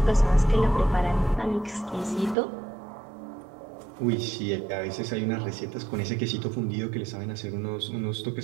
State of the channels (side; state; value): left; drops out; at 2.4 s